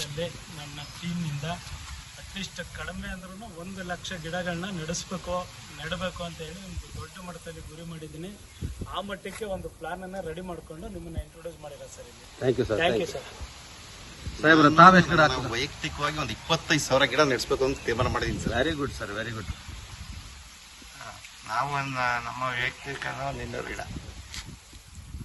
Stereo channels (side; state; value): both; identical; correlation 1.00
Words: ನನ್ನ ಟೀಮ್ನಿಂದ ಅಟ್ಲೀಸ್ಟ್ ಕಡಿಮೆ ಅಂದ್ರೂ 1 ಲಕ್ಷ ಗಿಡಗಳನ್ನ ನೆಡಬೇಕು ಅಂತ ಹೇಳಿ ಒಂದು ದೊಡ್ಡ ಮಟ್ಟದಲ್ಲಿ ಗುರಿ ಮಾಡಿದ್ದೀನಿ. ಆ ಮಟ್ಟಕ್ಕೆ ಒಂದು ಪ್ಲಾನ್ ಅನ್ನ ರೆಡಿ ಮಾಡ್ಕೊಂಡು ನಿಮ್ಮನ್ನ ಇಂಟ್ರೊಡ್ಯೂಸ್ ಮಾಡಿರೋ ಸರ್ ಇಲ್ಲಿ. Thank you sir. Thank you sir. ಸಾಹೇಬ್ರ, ತಾವು ಎಷ್ಟು ಗಿಡ ಹಾಕ್ಬೇಕು? ವೈಯಕ್ತಿಕವಾಗಿ ಒಂದು 25,000 ಗಿಡ ನೆಡ್ಸ್ಬೇಕು ಅಂತ ತೀರ್ಮಾನ ಮಾಡಿದ್ದೀನಿ sir. Very good sir, very good. ನಾವು ನಮ್ಮ ವೈಯಕ್ತಿಕ 200 ಗಿಡ.